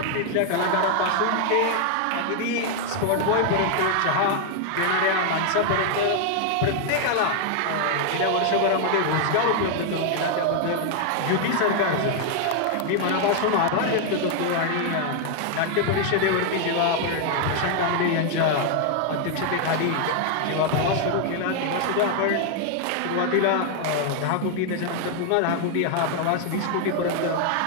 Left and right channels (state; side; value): different; both; correlation 0.00